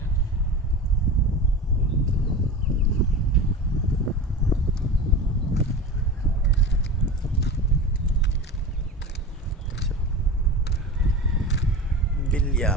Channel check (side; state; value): both; normal; correlation 0.30